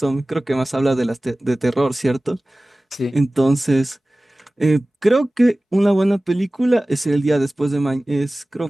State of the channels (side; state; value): both; normal; correlation 0.98